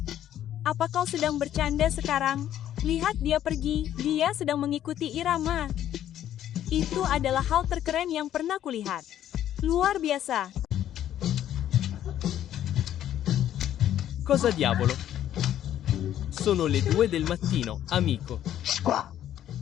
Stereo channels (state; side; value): quieter; right; 11.4 dB